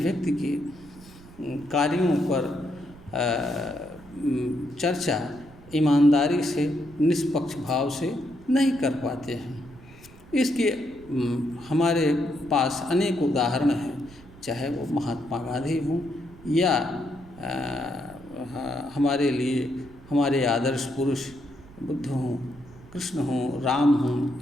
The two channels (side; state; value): right; noise; rumble, 21 dB below the sound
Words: के कार्यों पर चर्चा ईमानदारी से, निष्पक्ष भाव से नहीं कर पाते हैं। इसके हमारे पास अनेक उदाहरण हैं, चाहे वो महात्मा गांधी हों या हमारे लिए हमारे आदर्श पुरुष बुद्ध हों, कृष्ण हों, राम